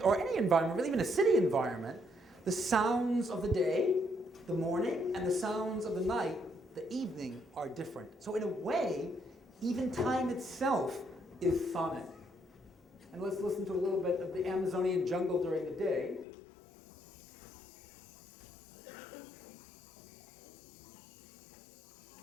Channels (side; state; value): right; drops out; at 16.2 s